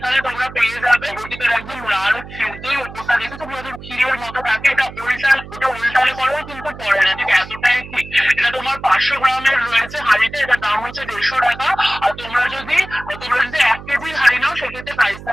তোমরা পেয়ে যাবে। নবদ্বীপের একদম লাল ক্ষীর দই, ওপরটা দেখে তোমরা ক্ষীরের মতো থাকে, এটা উল্টালে করেও কিন্তু পড়ে না, ঠিক এতটাই ঠিক। এটা তোমার 500 গ্রামের রয়েছে হাঁড়িতে, এটার দাম হচ্ছে 150 টাকা। আর তোমরা যদি 1 কেজির হাঁড়ি নাও, সেক্ষেত্রে প্রাইস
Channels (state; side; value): noise; right; hum, 15 dB below the sound